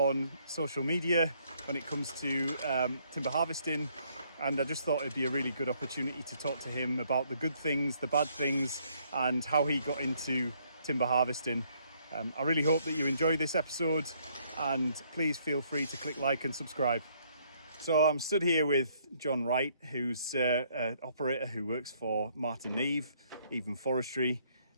social media when it comes to timber harvesting. And I just thought it'd be a really good opportunity to talk to him about the good things, the bad things, and how he got into timber harvesting. I really hope that you enjoy this episode, and please feel free to click like and subscribe. So I'm stood here with John Wright, who's an operator who works for Martin Neve, Even Forestry.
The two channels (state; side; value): inverted; both; correlation -0.68